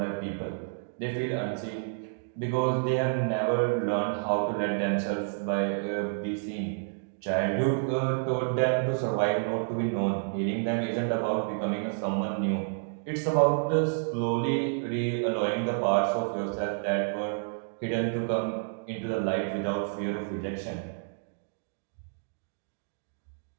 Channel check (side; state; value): left; silent; digital silence